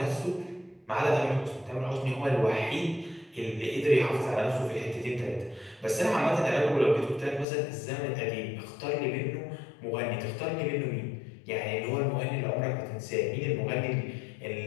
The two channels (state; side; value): drops out; right; at 7.5 s